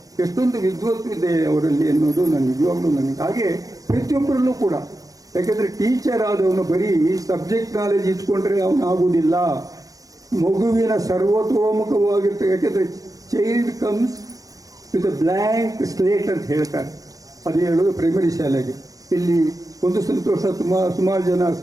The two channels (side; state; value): left; late; 0.17 ms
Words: ಎಷ್ಟೊಂದು ವಿದ್ವತ್ತು ಇದೆ ಅವರಲ್ಲಿ ಅನ್ನೋದು ನಾನು ನಿಜವಾಗ್ಲೂ ನನಗೆ. ಹಾಗೆ ಪ್ರತಿಯೊಬ್ಬರಲ್ಲೂ ಕೂಡ, ಯಾಕೆಂದರೆ ಟೀಚರ್ ಆದವನು ಬರೀ ಸಬ್ಜೆಕ್ಟ್ ನಾಲೆಜ್ ಇಟ್ಕೊಂಡ್ರೆ ಅವನು ಆಗುವುದಿಲ್ಲ. ಮಗುವಿನ ಸರ್ವತೋಮುಖವಾಗಿರ್ತದೆ. ಯಾಕೆಂದರೆ child comes with a blank slate ಅಂತ ಹೇಳ್ತಾರೆ. ಅದು ಹೇಳೋದು ಪ್ರೈಮರಿ ಶಾಲೆಗೆ. ಇಲ್ಲಿ ಒಂದು ಸಂತೋಷ, ಸುಮಾರು ಜನ